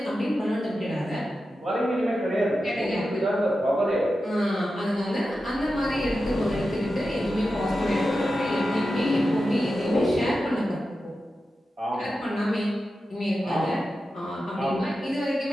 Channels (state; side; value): normal; both; correlation 0.91